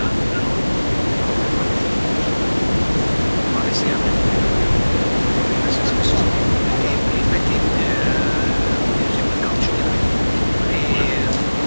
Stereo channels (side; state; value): both; inverted; correlation -1.00